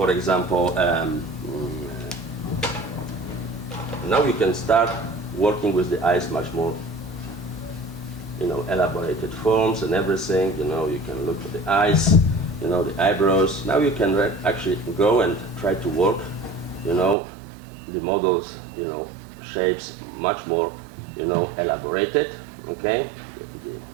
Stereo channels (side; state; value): left; drops out; at 17.2 s